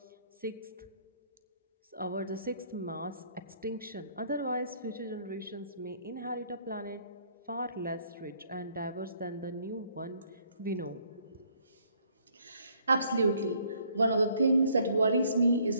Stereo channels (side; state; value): both; inverted; correlation -0.64